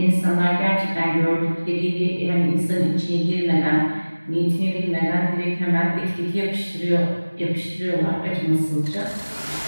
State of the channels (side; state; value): both; inverted; correlation -1.00